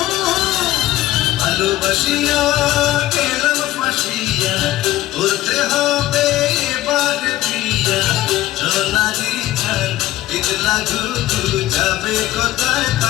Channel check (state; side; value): quieter; right; 15.2 dB